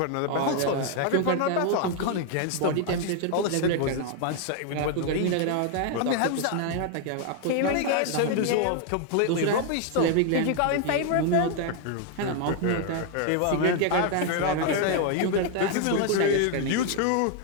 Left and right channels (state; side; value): different; both; correlation 0.00